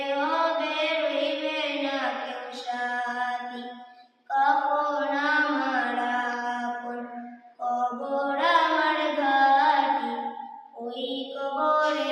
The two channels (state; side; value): identical; both; correlation 1.00